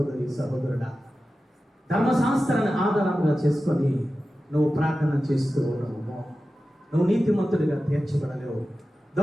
సహోదరుడా, ధర్మశాస్త్రాన్ని ఆధారంగా చేసుకొని నువ్వు ప్రార్థన చేస్తూ ఉన్నావు, నువ్వు నీతిమంతుడిగా తీర్చబడలేవు.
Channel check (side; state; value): both; normal; correlation 0.94